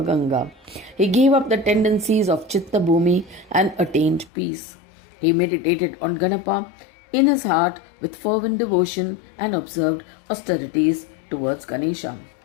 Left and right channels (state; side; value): drops out; right; at 4.3 s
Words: Ganga. He gave up the tendencies of Chitta Bhumi and attained peace. He meditated on Ganapa in his heart with fervent devotion and observed austerities towards Ganesha.